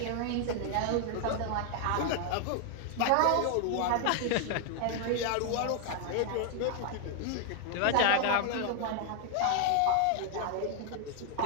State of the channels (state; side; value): different; both; correlation 0.00